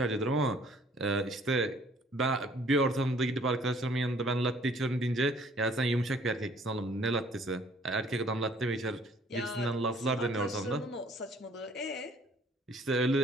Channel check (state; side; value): normal; both; correlation 0.58